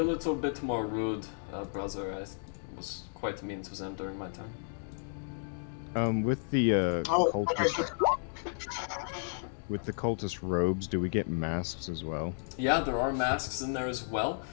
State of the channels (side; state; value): right; silent; digital silence